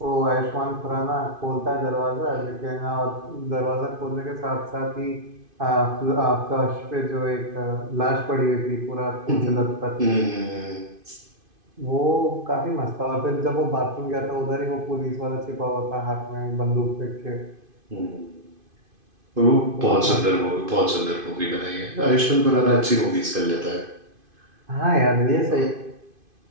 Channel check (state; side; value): late; left; 2.5 ms